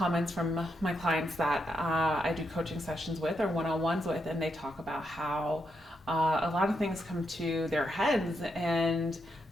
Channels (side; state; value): both; normal; correlation 0.81